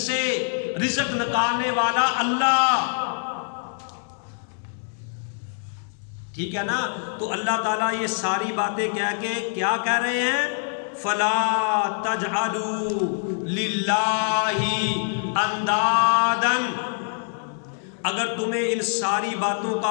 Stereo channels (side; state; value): right; silent; digital silence